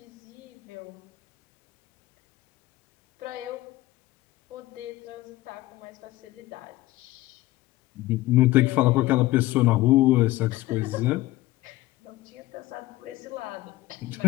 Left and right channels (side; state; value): right; quieter; 17.4 dB